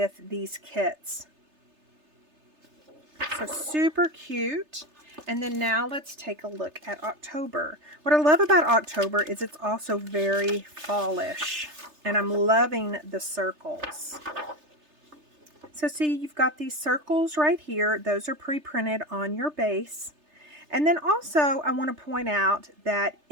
these kits. So super cute. And then now let's take a look at October. What I love about October is it's also very fallish, and I'm loving the circles. So see, you've got these circles right here. Those are pre-printed on your base. And then also I want to point out that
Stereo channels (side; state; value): left; late; 3.3 ms